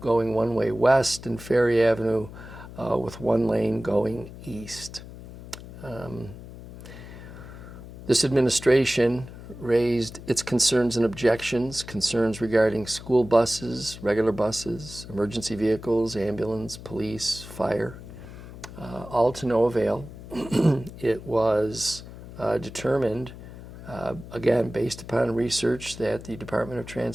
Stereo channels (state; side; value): noise; left; hum, 14 dB below the sound